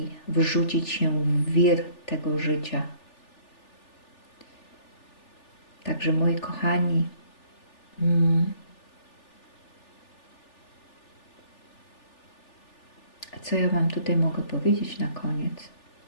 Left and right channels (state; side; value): late; right; 3.4 ms